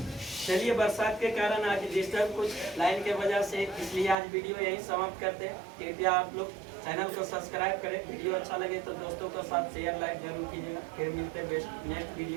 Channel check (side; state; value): left; drops out; at 4.2 s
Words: चलिए, बरसात के कारण आज डिस्टर्ब कुछ लाइन के वजह से, इसलिए आज वीडियो यही समाप्त करते हैं। कृपया आप लोग चैनल को सब्सक्राइब करें, वीडियो अच्छा लगे तो दोस्तों के साथ शेयर लाइक जरूर कीजिएगा। फिर मिलते हैं बेस्ट नेक्स्ट